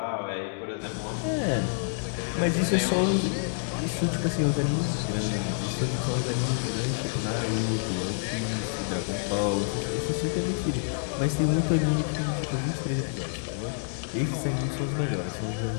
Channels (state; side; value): silent; right; digital silence